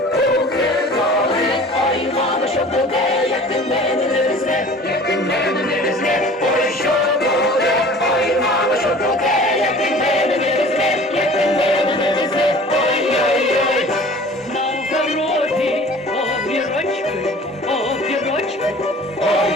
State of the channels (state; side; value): normal; both; correlation 0.45